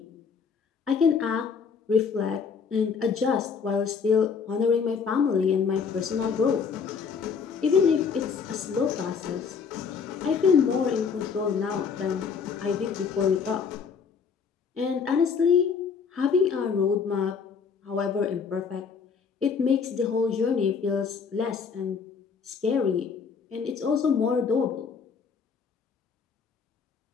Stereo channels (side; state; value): right; quieter; 6.0 dB